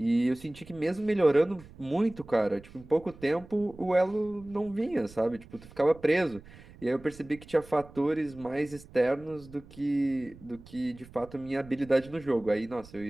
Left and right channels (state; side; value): noise; right; rumble, 20 dB below the sound